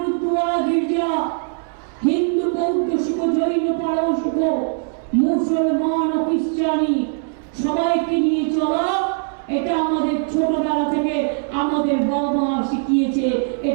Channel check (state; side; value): silent; left; digital silence